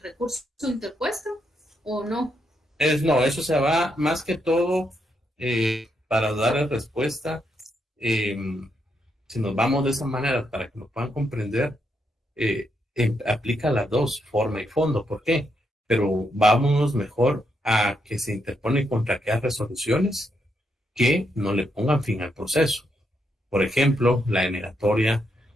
recurso interpuesto o no? No, eso se va más que todo para dar respuesta. eh, si nos vamos de esa manera para que nos puedan comprender, aplica las dos, forma y fondo. ¿Por qué? Pero vámonos mejor a que se interpone contra aquellas resoluciones que no le pongan fin al proceso. Por ejemplo, la denegatoria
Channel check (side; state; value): both; normal; correlation 0.79